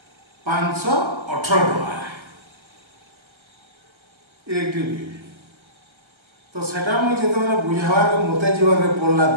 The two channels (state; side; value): late; left; 1.4 ms